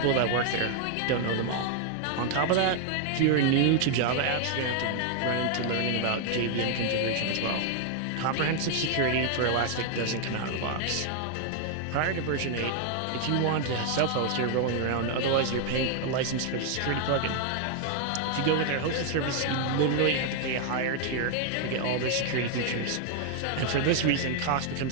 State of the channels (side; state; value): both; different; correlation 0.00